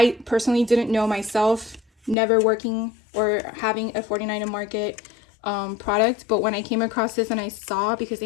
personally didn't know myself, never working or having a 49 and Market product. But when I came across this and I saw, because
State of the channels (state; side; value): drops out; right; at 2.1 s